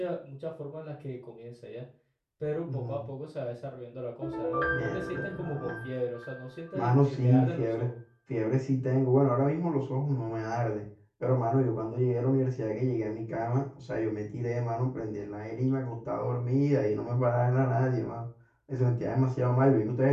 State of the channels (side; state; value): both; identical; correlation 1.00